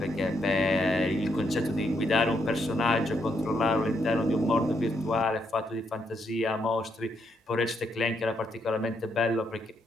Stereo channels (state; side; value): normal; both; correlation 0.77